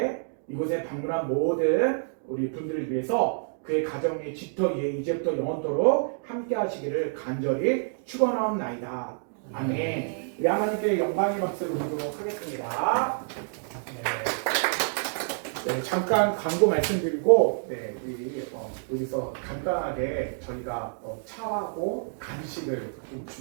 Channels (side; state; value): left; silent; digital silence